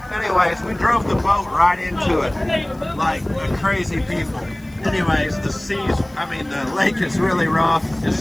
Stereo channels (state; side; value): noise; left; hiss, 29 dB below the sound